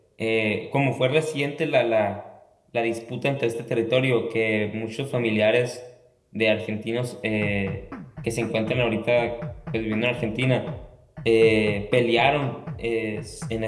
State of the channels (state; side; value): identical; both; correlation 1.00